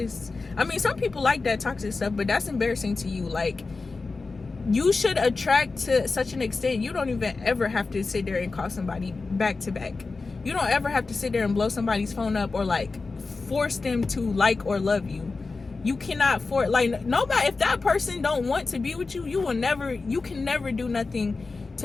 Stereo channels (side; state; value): right; quieter; 4.0 dB